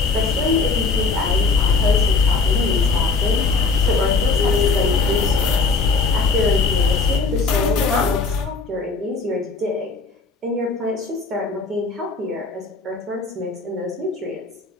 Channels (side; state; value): right; quieter; 4.1 dB